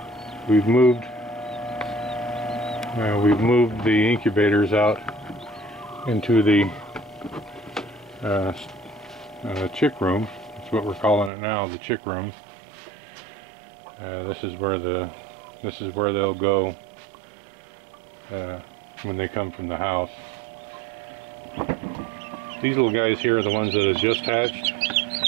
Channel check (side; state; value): left; drops out; at 11.3 s